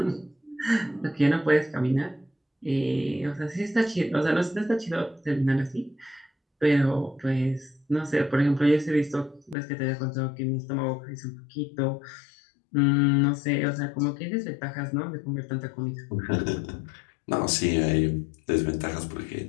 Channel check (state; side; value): drops out; right; at 9.6 s